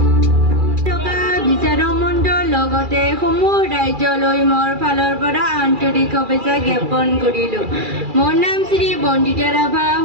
বিচাৰক মণ্ডল লগতে সমূহ ৰাজ্যলৈ মোৰ ফালৰ পৰা আন্তৰিক শুভেচ্ছা জ্ঞাপন কৰিলোঁ মোৰ নাম শ্ৰী বন্দিতা ৰাভা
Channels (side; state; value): left; late; 2.4 ms